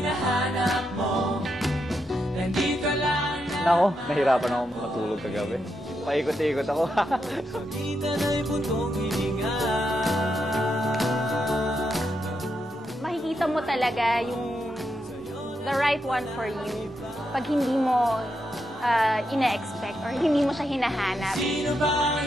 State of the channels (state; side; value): normal; both; correlation 0.83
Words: mo, nandito lang na. Nako, nahirapan ako matulog kagabi. Paikot-ikot ako. Sa kita na'y puntong hininga. Makikita mo talaga yung the right one for you pag hindi mo ina-expect or hindi mo siya hinahanap. Sino ba ang